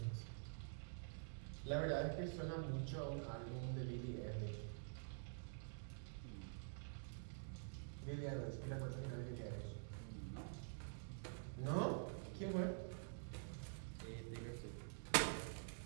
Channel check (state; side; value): silent; left; digital silence